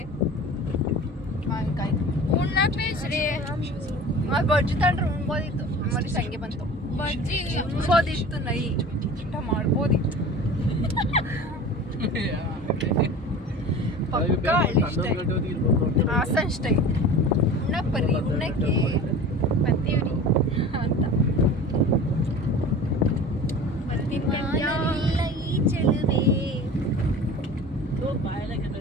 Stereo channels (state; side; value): normal; both; correlation 0.38